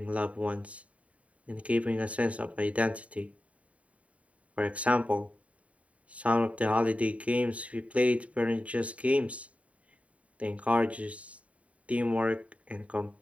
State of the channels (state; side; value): late; left; 0.066 ms